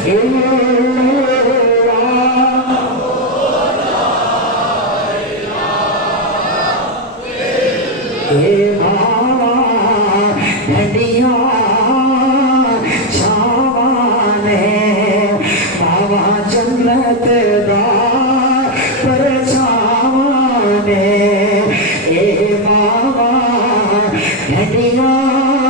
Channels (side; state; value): both; normal; correlation 0.06